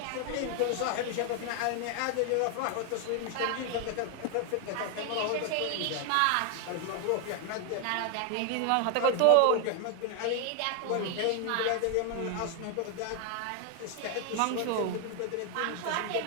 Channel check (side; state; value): both; different; correlation 0.00